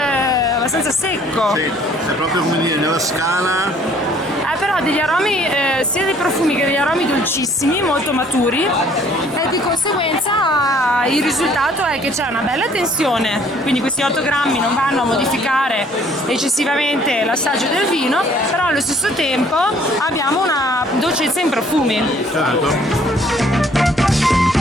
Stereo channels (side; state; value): both; normal; correlation 0.59